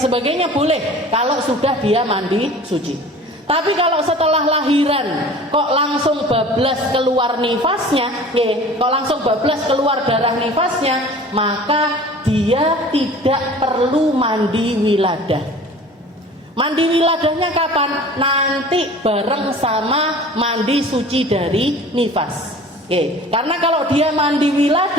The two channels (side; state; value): both; normal; correlation 0.43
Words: boleh kalau sudah dia mandi suci. Tapi kalau setelah lahiran kok langsung bablas keluar nifasnya, kok langsung bablas keluar darah nifasnya, maka dia tidak perlu mandi wiladah. Mandi wiladahnya kapan? Nanti bareng sama mandi suci dari nifas. Karena kalau dia mandi